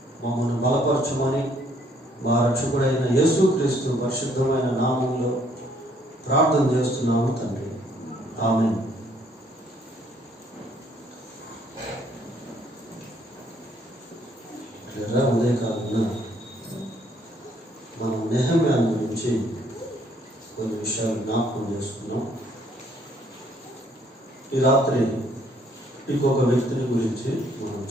మమ్మల్ని బలపరచమని మా రక్షకుడైన యేసుక్రీస్తు పరిశుద్ధమైన నామంలో ప్రార్థన చేస్తున్నాము తండ్రి. ఆమేన్. ఉదయకాలంలో మనం నెహెమ్యా గురించి కొన్ని విషయాలు జ్ఞాపకం చేసుకున్నాం. ఈ రాత్రి ఇంకొక వ్యక్తిని గురించి మనం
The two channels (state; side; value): normal; both; correlation 0.65